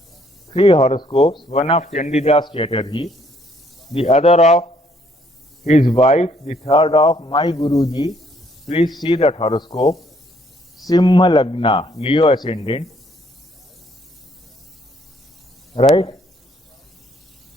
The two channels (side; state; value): both; normal; correlation 0.66